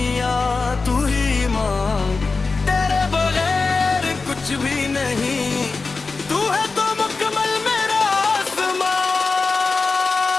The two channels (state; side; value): quieter; right; 4.1 dB